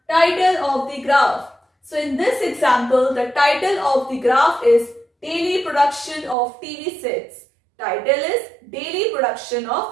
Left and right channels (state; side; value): drops out; left; at 6.4 s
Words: title of the graph. So in this example, the title of the graph is Daily Production of TV Sets. Title is Daily Production